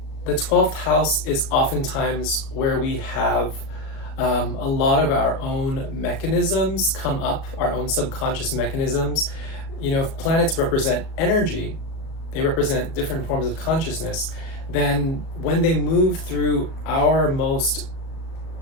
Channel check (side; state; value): right; late; 37 ms